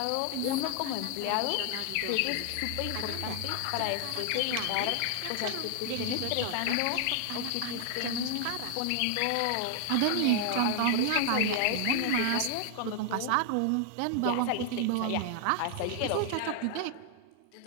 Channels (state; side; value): different; both; correlation 0.00